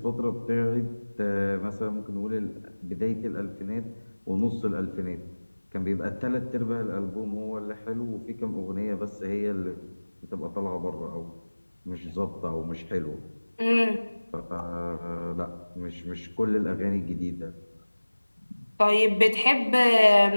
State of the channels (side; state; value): both; inverted; correlation -1.00